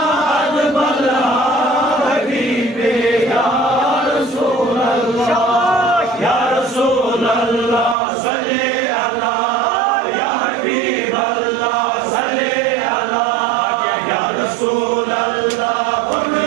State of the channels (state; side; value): drops out; left; at 8.0 s